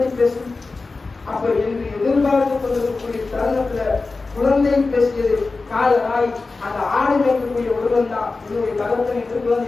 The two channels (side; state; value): right; quieter; 3.8 dB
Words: பேசும்? அப்ப என்று எதிர்பார்த்து கொண்டிருக்கக்கூடிய தருணத்துல குழந்தை பேசியது காலராய் அந்த ஆடு மேற்கக்கூடிய ஒருவன் தான் என்னுடைய தகப்பன் என்று